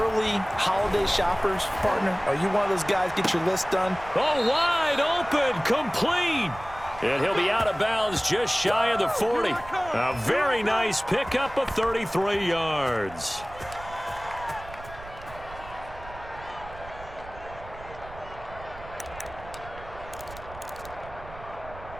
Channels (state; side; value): noise; right; rumble, 16 dB below the sound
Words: holiday shoppers, partner? Are you one of those guys get your list done? Oh, wide open, complete. And he'll be out of bounds just shy of the 40. A very nice pickup of 33 yards.